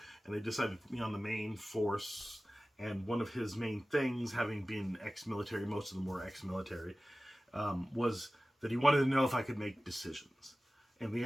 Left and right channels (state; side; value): normal; both; correlation 0.96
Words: and they decided to put me on the main force. And one of his main things, having been ex-military, most of them were ex-military, was that he wanted to know if I could make decisions. And the